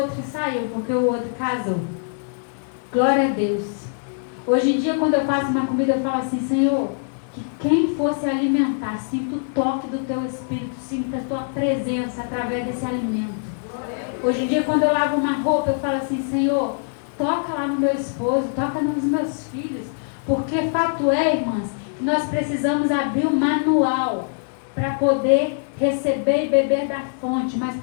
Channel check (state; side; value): silent; right; digital silence